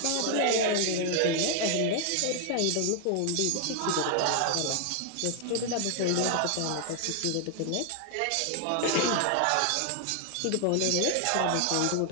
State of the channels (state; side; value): different; both; correlation 0.00